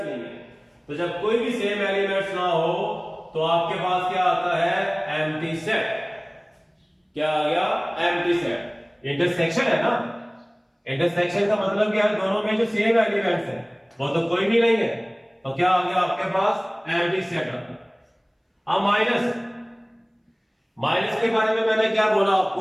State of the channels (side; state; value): both; identical; correlation 1.00